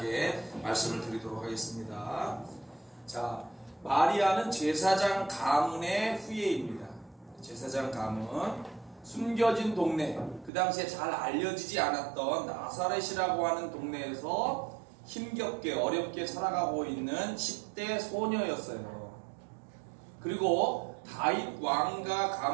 말씀을 드리도록 하겠습니다. 자, 마리아는 제사장 가문의 후예입니다. 제사장 가문, 숨겨진 동네, 그 당시에 잘 알려지지 않았던 나사렛이라고 하는 동네에서 힘겹게 어렵게 살아가고 있는 10대 소녀였어요. 그리고 다윗 왕가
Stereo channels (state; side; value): drops out; left; at 10.5 s